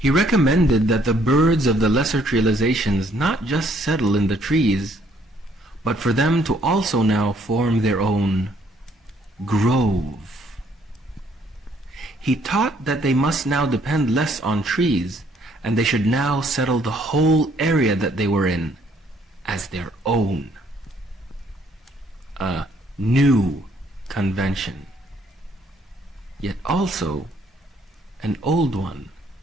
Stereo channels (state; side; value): normal; both; correlation 0.66